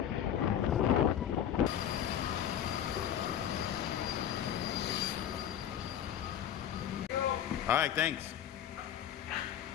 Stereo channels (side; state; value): right; quieter; 9.9 dB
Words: All right, thanks.